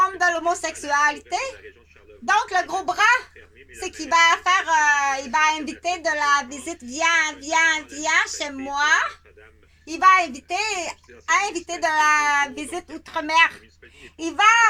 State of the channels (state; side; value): identical; both; correlation 1.00